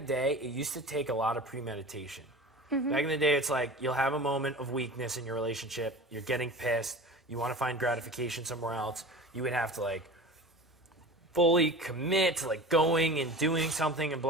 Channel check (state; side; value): normal; both; correlation 0.35